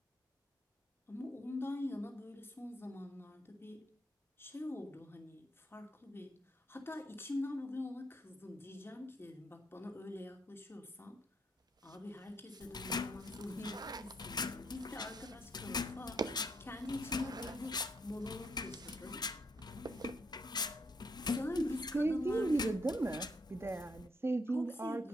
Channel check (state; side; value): normal; both; correlation 0.74